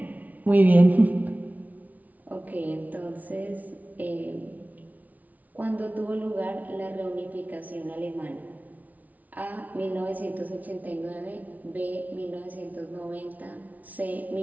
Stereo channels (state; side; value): late; left; 0.074 ms